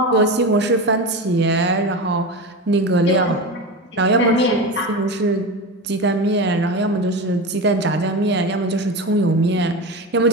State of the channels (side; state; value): both; normal; correlation 0.23